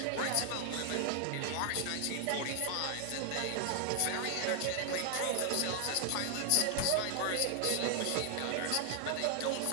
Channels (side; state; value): both; different; correlation 0.00